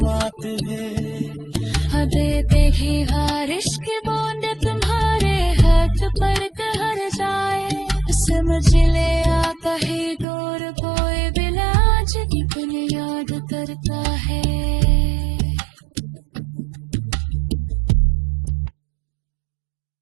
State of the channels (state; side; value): drops out; left; at 10.2 s